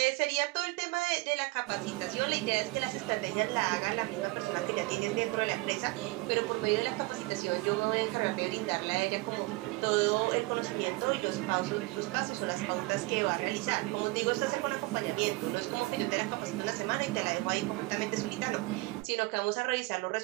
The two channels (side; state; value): left; quieter; 23.1 dB